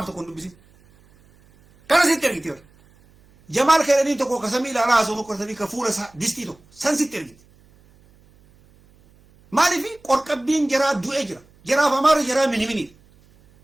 tokko hin dubbisin kana sitti ergiti bar jamaal keedhanii tokko ka samii ilaalaa haasoo tokko ka fuula isaa distii tokko san sitti ergiti maalifi qorqabbiin jaraa du'ee jira jaraaf amaara jaraa mini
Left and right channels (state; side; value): noise; right; hum, 30 dB below the sound